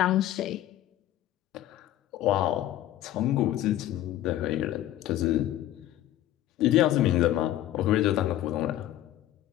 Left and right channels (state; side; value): quieter; right; 13.4 dB